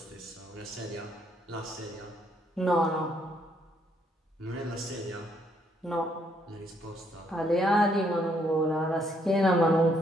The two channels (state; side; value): normal; both; correlation 0.71